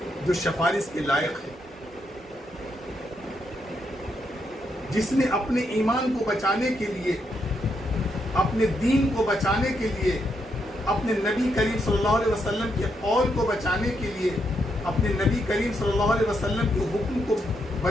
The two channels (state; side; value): normal; both; correlation 0.79